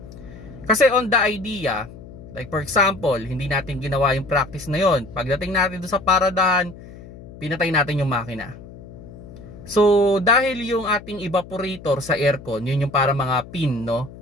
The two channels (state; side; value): noise; left; hum, 17 dB below the sound